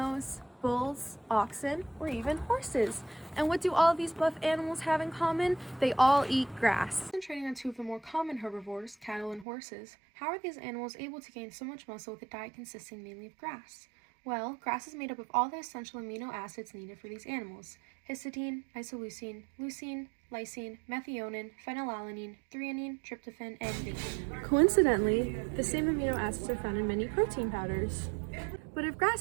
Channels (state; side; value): drops out; left; at 9.5 s